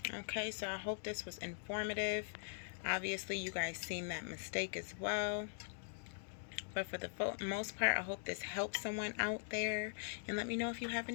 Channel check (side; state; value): right; silent; digital silence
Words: Okay, so I hope this was informative. Obviously, you guys seen that mistake as well. But for the most part, I hope this helps someone out there. And let me know if you have